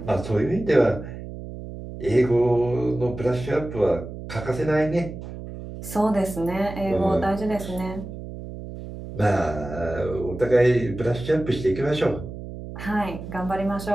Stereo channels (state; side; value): noise; right; hum, 11 dB below the sound